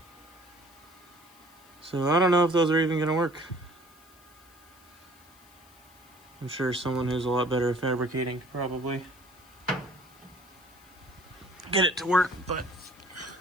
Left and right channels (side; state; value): left; noise; hiss, 26 dB below the sound